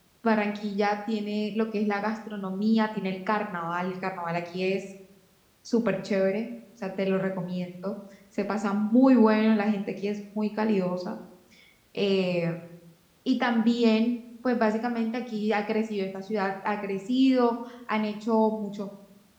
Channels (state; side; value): identical; both; correlation 1.00